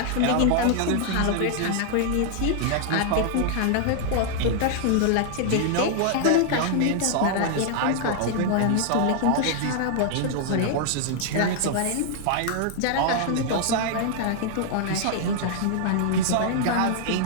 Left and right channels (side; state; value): both; different; correlation 0.00